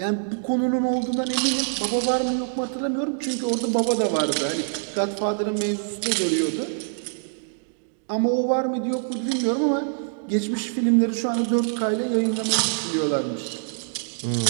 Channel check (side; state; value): left; silent; digital silence